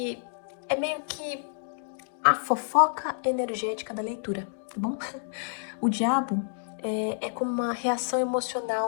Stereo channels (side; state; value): right; silent; digital silence